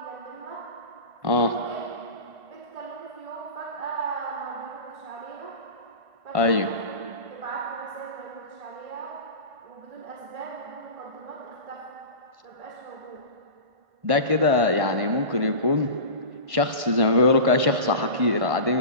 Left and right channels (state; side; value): late; left; 1.5 ms